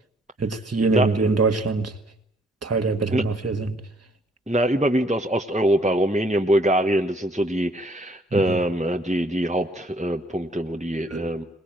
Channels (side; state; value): both; normal; correlation 0.64